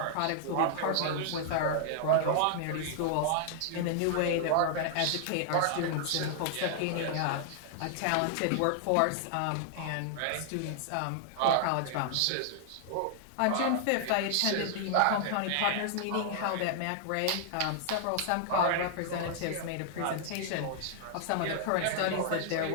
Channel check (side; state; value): both; different; correlation -0.01